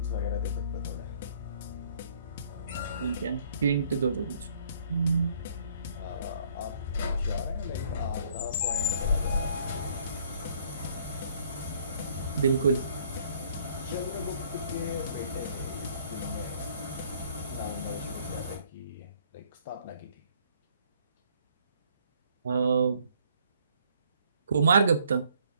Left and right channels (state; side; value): inverted; both; correlation -0.62